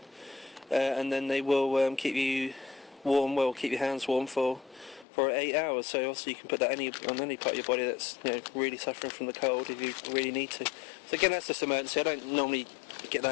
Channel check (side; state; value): right; drops out; at 5.1 s